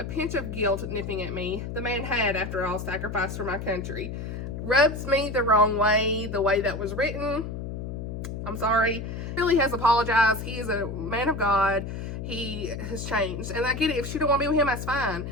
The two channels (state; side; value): noise; left; hum, 6 dB below the sound